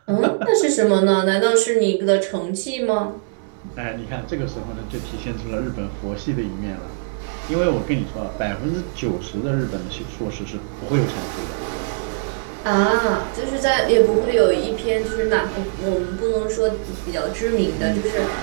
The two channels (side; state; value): left; silent; digital silence